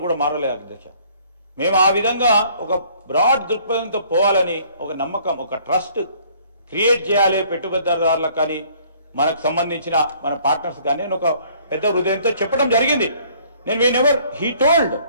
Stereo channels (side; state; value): both; inverted; correlation -0.59